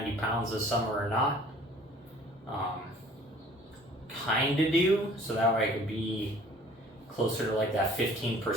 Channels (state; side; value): normal; both; correlation 0.52